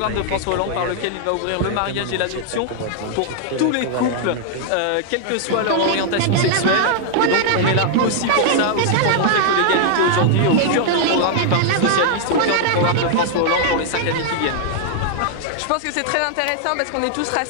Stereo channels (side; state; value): both; different; correlation -0.01